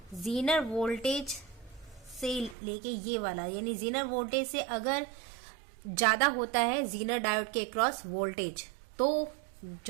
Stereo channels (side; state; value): left; drops out; at 2.6 s